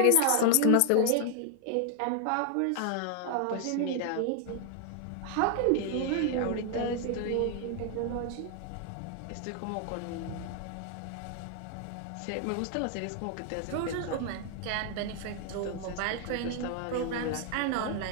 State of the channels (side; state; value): both; different; correlation 0.00